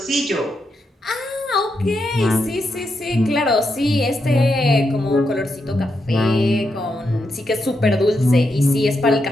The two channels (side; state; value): both; normal; correlation 0.83